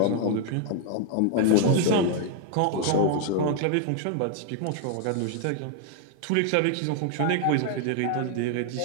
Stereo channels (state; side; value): different; both; correlation 0.00